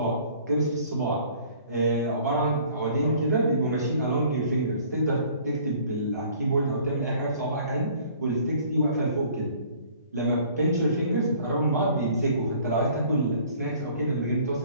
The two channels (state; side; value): inverted; both; correlation -0.53